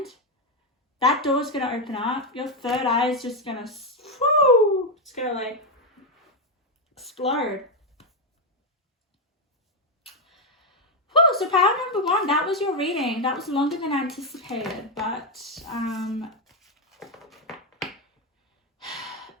that door's going to open up. Your third eye is just going to, it's going to, like, explode. Whew, so power number 1, that was your reading. That was longer than anticipated, but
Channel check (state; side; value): normal; both; correlation 0.04